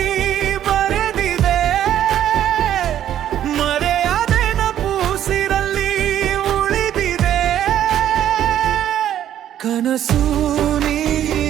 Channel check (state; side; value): quieter; left; 11.1 dB